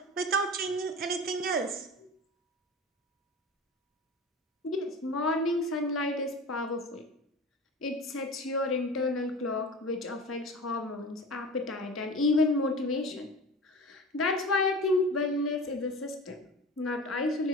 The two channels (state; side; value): normal; both; correlation 0.35